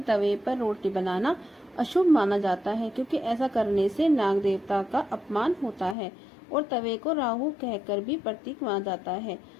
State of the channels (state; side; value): drops out; right; at 6.0 s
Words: तवे पर रोटी बनाना अशुभ माना जाता है, क्योंकि ऐसा करने से नाग देवता का अपमान होता है और तवे को राहु कहकर भी प्रतीक माना जाता है।